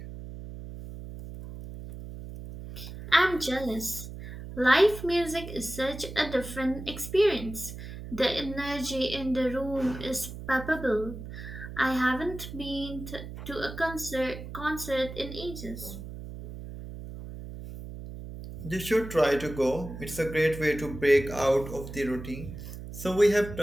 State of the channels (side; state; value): right; noise; hum, 11 dB below the sound